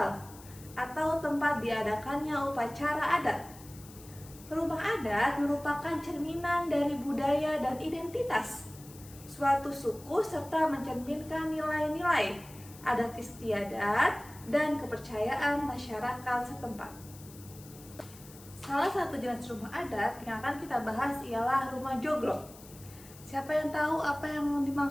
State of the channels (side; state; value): left; noise; hiss, 20 dB below the sound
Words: atau tempat diadakannya upacara adat. Rumah adat merupakan cerminan dari budaya dan identitas suatu suku serta mencerminkan nilai-nilai adat istiadat, dan kepercayaan masyarakat setempat. Salah satu jenis rumah adat yang akan kita bahas ialah rumah joglo. Siapa yang tahu apa yang